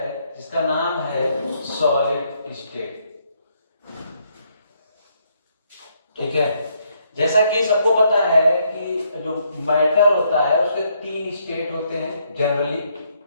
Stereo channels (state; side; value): inverted; both; correlation -0.73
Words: जिसका नाम है सॉलिड स्टेट। ठीक है, जैसा कि सबको पता है कि जो मैटर होता है उसके 3 स्टेट होते हैं जनरली।